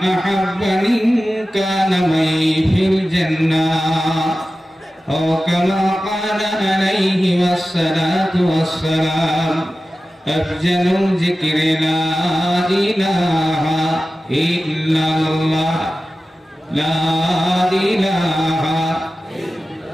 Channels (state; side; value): normal; both; correlation 0.94